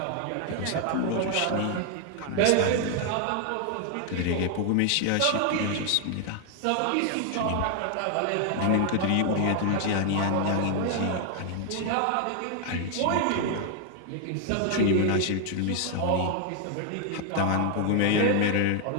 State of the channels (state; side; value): different; both; correlation 0.00